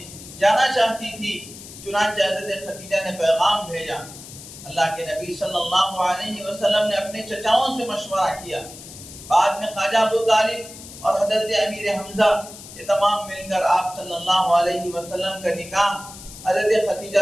جانا چاہتی تھی۔ چنانچہ حضرت خدیجہ نے پیغام بھیجا، اللہ کے نبی صلی اللہ علیہ وسلم نے اپنے چچاؤں سے مشورہ کیا، بعد میں خواجہ ابو طالب اور حضرت امیر حمزہ یہ تمام مل کر آپ صلی اللہ علیہ وسلم کا نکاح حضرت خدیجہ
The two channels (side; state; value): left; noise; hiss, 15 dB below the sound